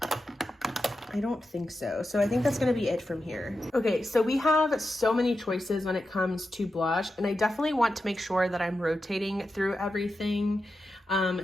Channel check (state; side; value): normal; both; correlation 0.90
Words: I don't think so. So I think that's going to be it from here. Okay, so we have so many choices when it comes to blush, and I definitely want to make sure that I'm rotating through everything.